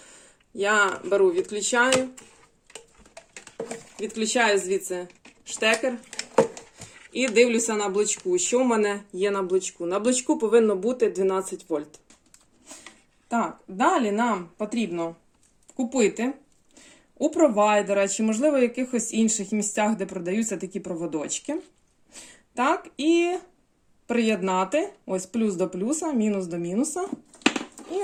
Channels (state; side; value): identical; both; correlation 1.00